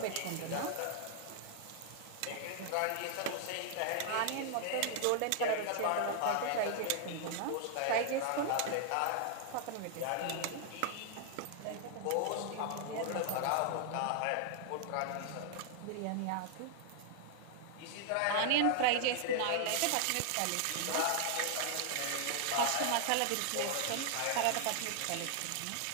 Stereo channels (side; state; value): both; different; correlation 0.00